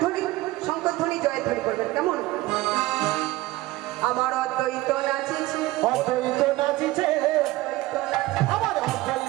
শঙ্করধ্বনি জয়ধ্বনি করবেন কেমন। আমার অদ্বৈত নাচিছে অদ্বৈত নাচিছে আমার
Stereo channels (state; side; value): quieter; left; 18.4 dB